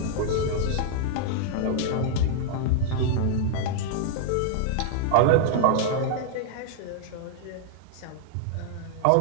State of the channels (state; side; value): different; both; correlation -0.01